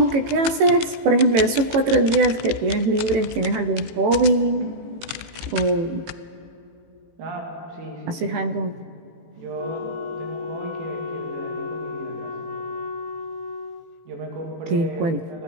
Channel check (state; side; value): late; left; 18 ms